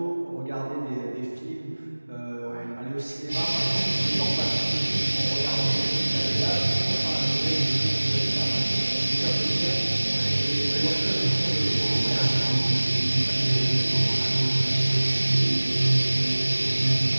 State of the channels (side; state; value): both; inverted; correlation -1.00